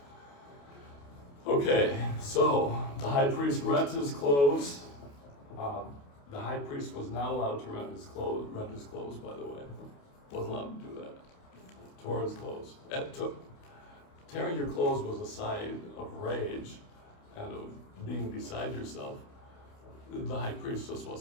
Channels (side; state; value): right; late; 28 ms